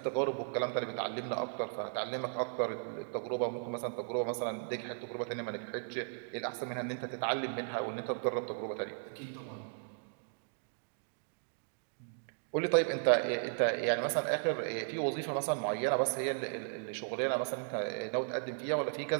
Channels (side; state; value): left; silent; digital silence